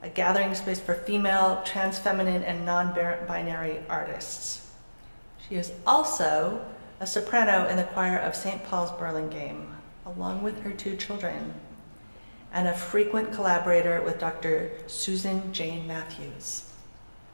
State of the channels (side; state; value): both; inverted; correlation -1.00